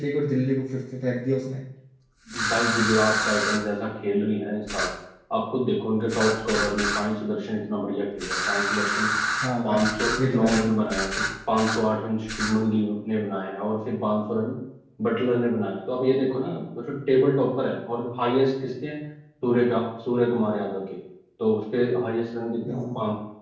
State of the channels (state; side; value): identical; both; correlation 1.00